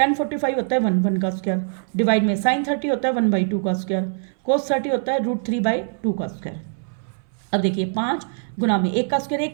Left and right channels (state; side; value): silent; left; 60 dB below the other